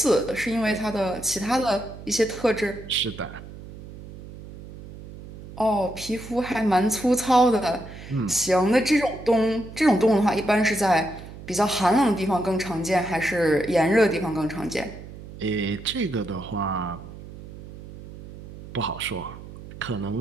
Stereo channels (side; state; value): right; noise; hum, 15 dB below the sound